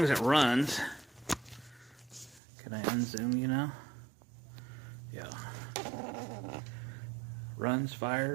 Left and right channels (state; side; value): drops out; left; at 2.4 s